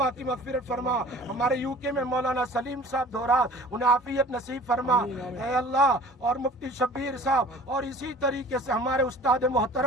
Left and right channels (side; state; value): both; normal; correlation 0.45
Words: کی مغفرت فرما. ہمارے یو کے میں مولانا سلیم صاحب دھورات, انہیں عافیت نصیب فرما اے اللہ, اور مفتی شبیر صاحب, اور اسی طریقے سے ہمارے استاد